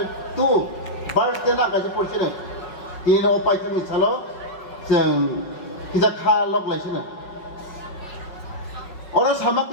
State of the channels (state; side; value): late; right; 5.5 ms